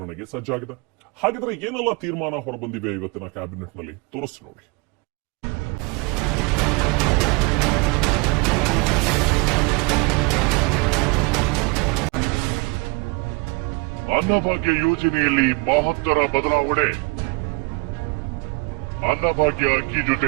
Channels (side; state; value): left; quieter; 28.7 dB